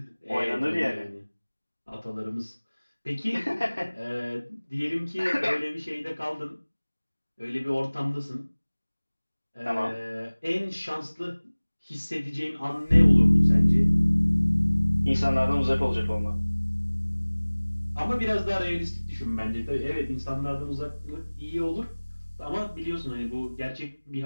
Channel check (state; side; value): inverted; both; correlation -1.00